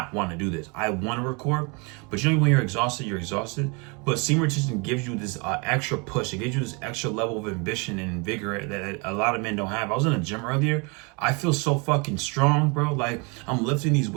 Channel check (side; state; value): left; quieter; 31.1 dB